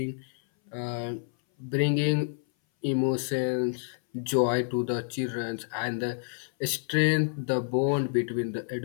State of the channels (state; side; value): silent; right; 58 dB below the other